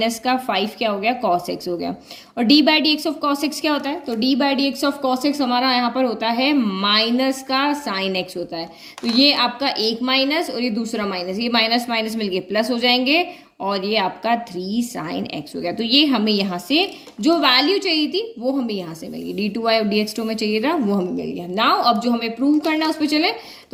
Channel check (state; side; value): identical; both; correlation 1.00